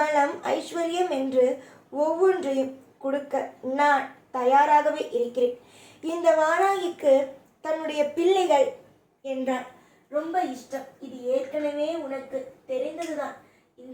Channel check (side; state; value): both; identical; correlation 1.00